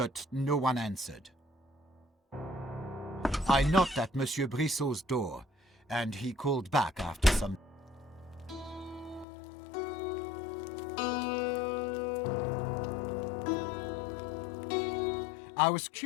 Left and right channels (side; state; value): right; drops out; at 9.2 s